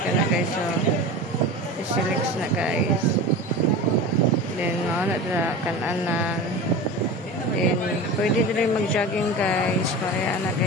kana guys. So Sisilix na guys. Then mao na dira kan-anan. Then pwede din mag-jogging guys. Kaya na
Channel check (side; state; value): both; normal; correlation 0.31